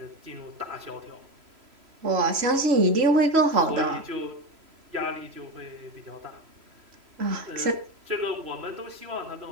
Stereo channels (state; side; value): late; left; 3.0 ms